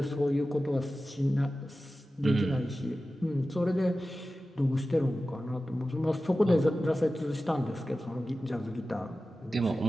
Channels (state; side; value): normal; both; correlation 0.94